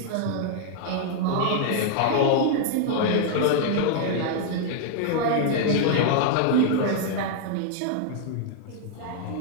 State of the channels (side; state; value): both; different; correlation 0.00